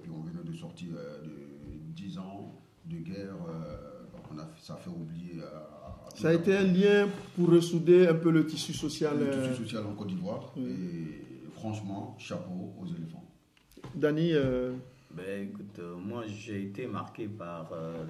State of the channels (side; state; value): both; identical; correlation 1.00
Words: on venait de sortir de 10 ans de guerre. Ça a fait oublier. Ça a été un lien pour ressouder un peu le tissu social. Le tissu social en Côte d'Ivoire. Oui. Et franchement, chapeau aux éléphants. Dany écoute, moi j'ai été marqué par